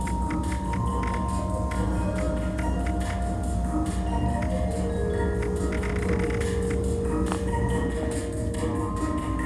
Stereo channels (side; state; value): both; identical; correlation 1.00